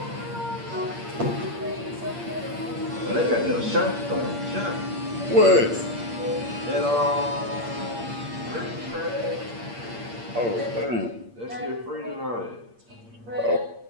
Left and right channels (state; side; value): late; left; 8.6 ms